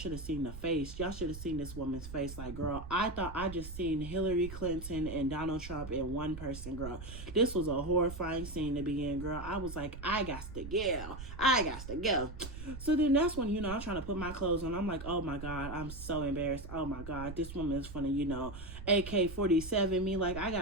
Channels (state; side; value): noise; right; rumble, 10 dB below the sound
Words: have seen the face. Y'all should have seen this woman's face. Like, girl, I thought I just seen Hillary Clinton and Donald Trump in one person, girl. This was a horrifying scene to begin, girl. I was like, I got to go. So then that's when, I'm trying to put my clothes on. I'm like, oh my God, I'm so embarrassed. Oh my God, this woman is funny, AK-47 me. Like, I